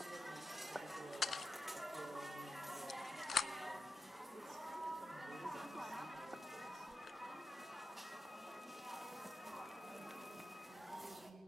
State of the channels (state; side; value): normal; both; correlation 0.90